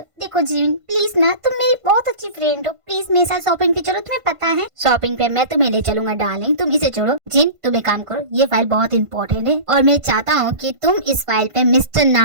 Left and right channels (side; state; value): left; late; 1.5 ms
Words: देखो जिन प्लीज ना, तुम मेरी बहुत अच्छी फ्रेंड हो, प्लीज मेरे साथ शॉपिंग पे चलो। तुम्हें पता है शॉपिंग पे मैं तुम्हें ले चलूंगा डार्लिंग, तुम इसे छोड़ो। जिन तुम एक काम करो, ये फाइल बहुत इंपॉर्टेंट है और मैं चाहता हूँ कि तुम इस फाइल पे मिस्टर